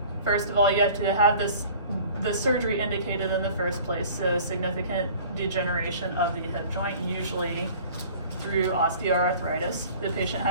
first of all, you have to have the surgery indicated in the first place, so significant degeneration of the hip joint, usually through osteoarthritis. The patient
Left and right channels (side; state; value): both; inverted; correlation -0.47